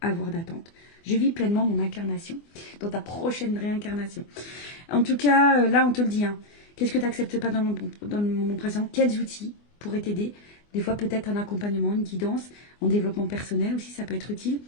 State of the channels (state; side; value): late; right; 24 ms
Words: avoir d'attente? Je vis pleinement mon incarnation dans ta prochaine réincarnation. En tout cas, là, on te le dit. Hein. Qu'est-ce que tu n'acceptes pas dans le moment présent? Quels outils pourraient t'aider? Des fois, peut-être un accompagnement, une guidance, en développement personnel aussi, ça peut être utile.